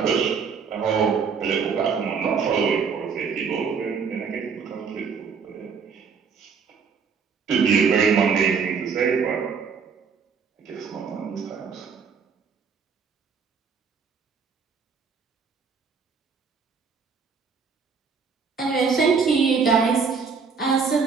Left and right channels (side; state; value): left; quieter; 5.7 dB